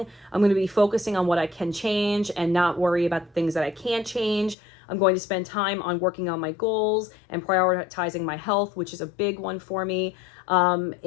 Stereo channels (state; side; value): drops out; right; at 4.5 s